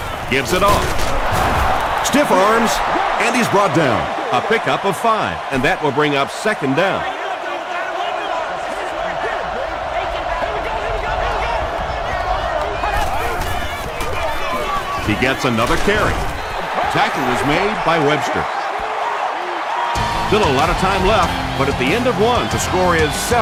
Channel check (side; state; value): both; identical; correlation 1.00